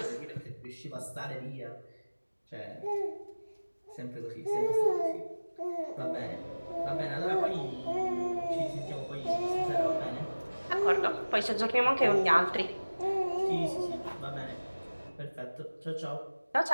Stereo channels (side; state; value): both; inverted; correlation -1.00